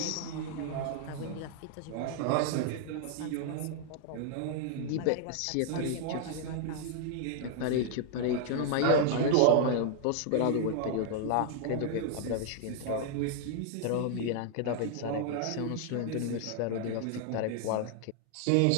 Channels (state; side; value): different; both; correlation -0.01